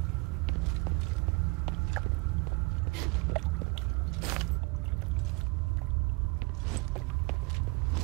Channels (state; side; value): quieter; left; 28.2 dB